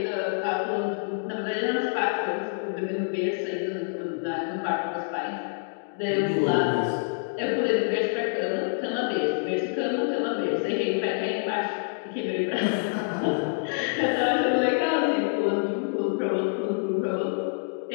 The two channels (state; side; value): silent; right; digital silence